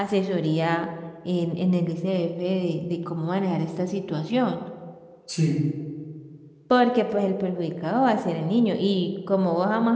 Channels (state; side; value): identical; both; correlation 1.00